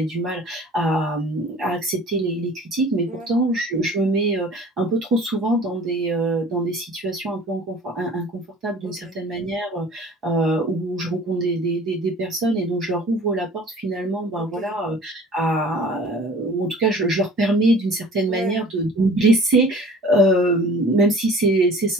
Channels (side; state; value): both; normal; correlation 0.46